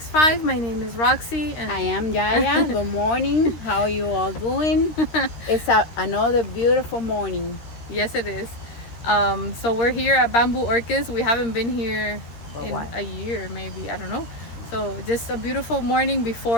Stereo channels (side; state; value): right; late; 13 ms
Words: My name is Roxy and I am Yaya. Good morning. How are you all doing? It's another beautiful morning. yes it is. So we're here at Bamboo Orchids. We haven't been here For in what? a year maybe, I don't know. So just a beautiful morning